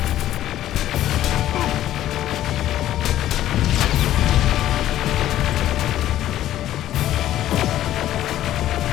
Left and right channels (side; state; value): right; quieter; 12.9 dB